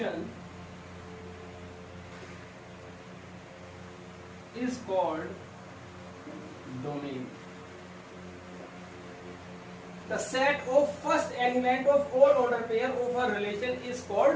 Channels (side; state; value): both; identical; correlation 1.00